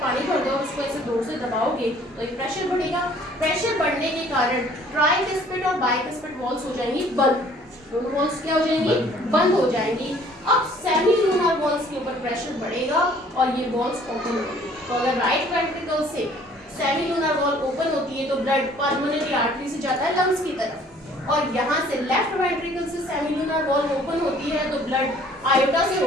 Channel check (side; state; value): both; normal; correlation 0.56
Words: पानी भर दो और उसको ऐसे जोर से दबाओगे तो एक प्रेशर बढ़ेगा. प्रेशर बढ़ने के कारण ट्राइकस्पिड और बाइकस्पिड वॉल्स हो जाएंगी बंद. दोनों वॉल्स क्या हो जाएंगी? बंद हो जाएंगी. अब सेमीलूनर वॉल्स के ऊपर प्रेशर बढ़ेगा और ये वॉल्स ओपन होंगी. तो अगर राइट वेंट्रिकल से सेमीलूनर वॉल ओपन होती है तो ब्लड पल्मोनरी आर्टरी से जाता है लंग्स की तरफ, और यहाँ से लेफ्ट वेंट्रिकल से सेमीलूनर वॉल ओपन होती है तो ब्लड आयोटा से